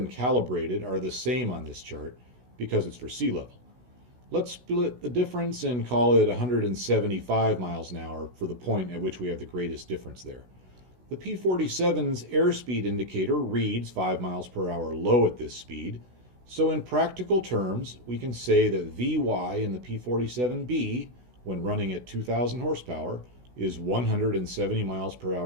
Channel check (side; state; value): left; late; 16 ms